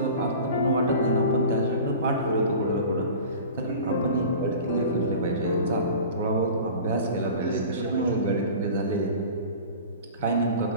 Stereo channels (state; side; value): inverted; both; correlation -0.38